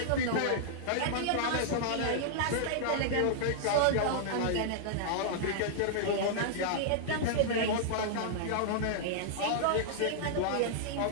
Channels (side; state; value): both; different; correlation -0.01